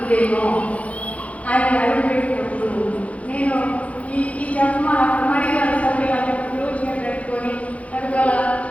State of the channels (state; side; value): late; right; 0.066 ms